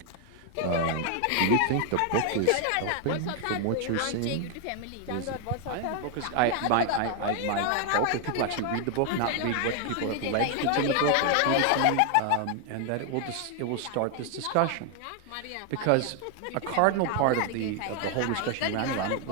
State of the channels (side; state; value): both; different; correlation 0.00